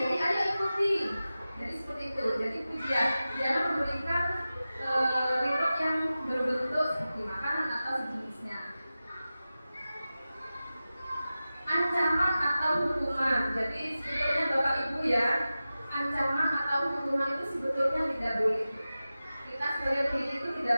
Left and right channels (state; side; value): inverted; both; correlation -0.95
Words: ayo ikuti. Jadi seperti itu, jadi pujian. Jangan memberikan reward yang berbentuk seperti makanan atau sejenisnya. Ancaman atau hukuman. Jadi sebetulnya Bapak Ibu ya, ancaman atau kalau hukuman itu sebetulnya tidak boleh. Kita sebagai pendidik itu tidak